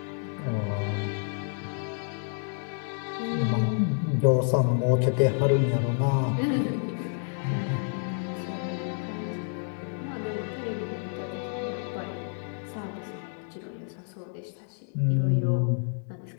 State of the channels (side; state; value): right; silent; 59 dB below the other